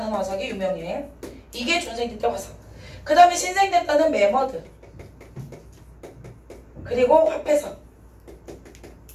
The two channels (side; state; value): both; identical; correlation 1.00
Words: 화석이 유명해. 이게 중생대 때 화석. 그 다음에 신생대 때는 메머드, 그리고 화폐석.